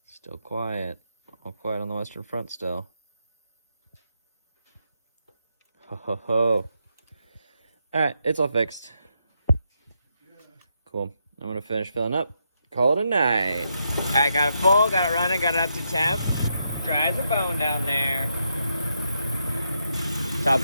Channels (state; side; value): inverted; both; correlation -0.81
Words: Still quiet. All quiet on the western front still. Ho ho ho. Alright, it's all fixed. Cool. I'm gonna finish filling up. Call it a night. Alright, got it full, got it running, got it up to temp. Dry as a bone down there. Top